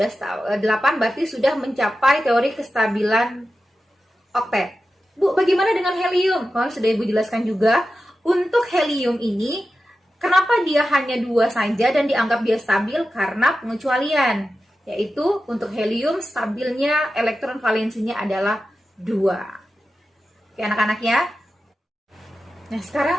8 berarti sudah mencapai teori kestabilan oktet. Bu, bagaimana dengan helium? Kalau sudah Ibu jelaskan juga, untuk helium ini, kenapa dia hanya 2 saja dan dianggap dia stabil? Karena pengecualian, yaitu untuk helium stabilnya elektron valensinya adalah 2. Oke anak-anak ya. Nah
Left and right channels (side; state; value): both; normal; correlation 0.92